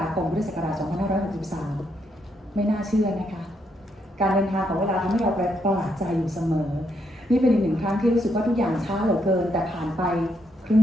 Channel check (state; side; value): normal; both; correlation 0.77